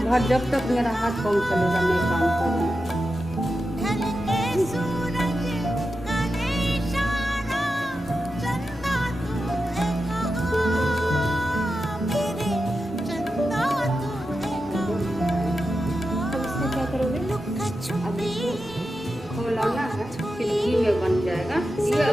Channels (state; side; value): normal; both; correlation 0.90